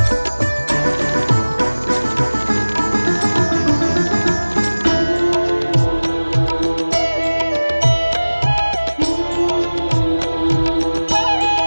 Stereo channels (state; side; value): inverted; both; correlation -1.00